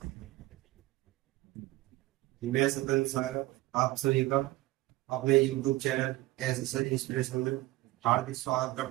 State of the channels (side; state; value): left; quieter; 18.6 dB